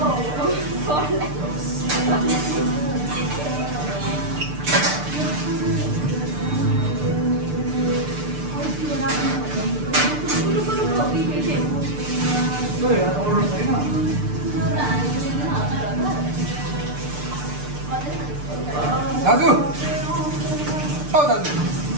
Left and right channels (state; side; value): late; left; 6.7 ms